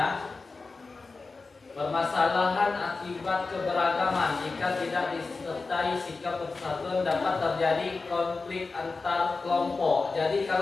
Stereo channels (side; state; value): right; quieter; 4.0 dB